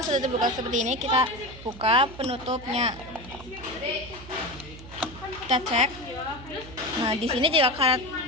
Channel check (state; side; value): noise; right; hum, 16 dB below the sound